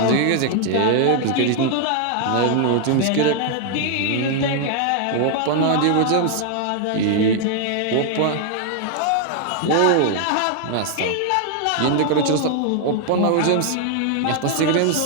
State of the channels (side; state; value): both; different; correlation 0.00